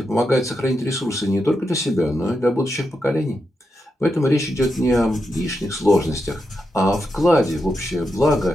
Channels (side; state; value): both; normal; correlation 0.86